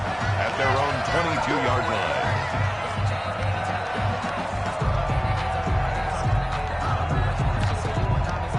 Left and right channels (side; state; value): both; identical; correlation 1.00